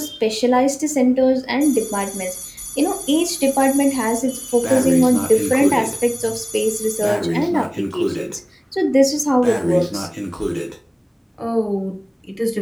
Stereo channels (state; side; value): identical; both; correlation 1.00